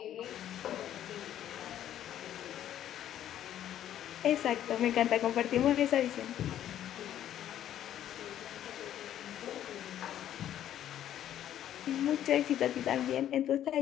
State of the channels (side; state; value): right; quieter; 11.3 dB